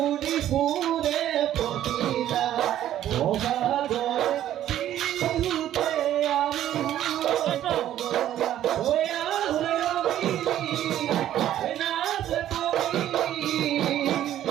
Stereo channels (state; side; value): quieter; left; 12.0 dB